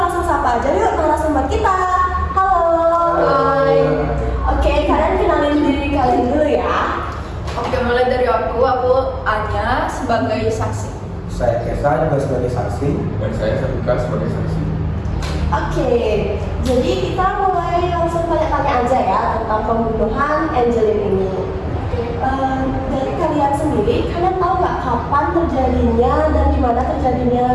sapa aja yuk narasumber kita. Halo. Hai. Oke, kalian kenalin diri kalian dulu ya. Oke, mulai dari aku Anya sebagai saksi. Saya Kesa juga sebagai saksi. Dan saya Sabika sebagai saksi. Oke, jadi kita mulai langsung tanya-tanya aja ya tentang pembunuhan Angelin ini. Dari kalian sendiri, kalian tahu nggak kapan terjadinya dan di mana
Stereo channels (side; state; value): both; identical; correlation 1.00